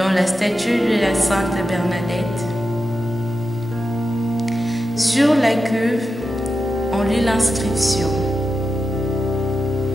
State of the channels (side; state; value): both; normal; correlation 0.90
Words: la statue de la Sainte Bernadette. Sur la cuve, on lit l'inscription